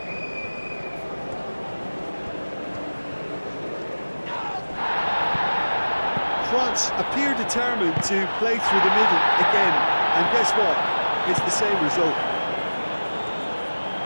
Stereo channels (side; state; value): both; inverted; correlation -1.00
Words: France appear determined to play through the middle again, and guess what? It's the same result.